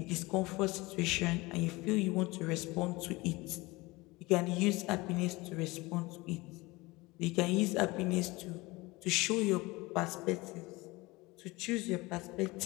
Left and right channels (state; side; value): quieter; right; 22.4 dB